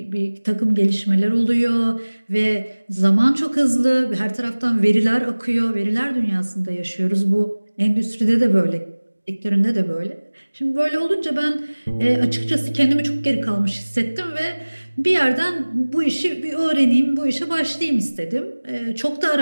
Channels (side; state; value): both; inverted; correlation -1.00